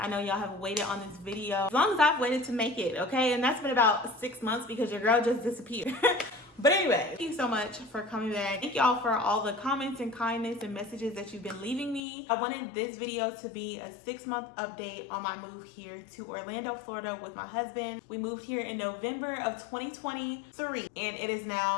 know y'all have waited on this video as long as I've waited to make it, okay? And that's been about 6 months because your girl just disappeared. But anyway, thank you so much for coming back. Thank y'all for all the comments and kindness and messages that you've been leaving me. I wanted this video to be a 6-month update on my move here to Orlando, Florida with my husband. We moved here in November of 2023 and it is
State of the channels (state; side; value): drops out; right; at 12.0 s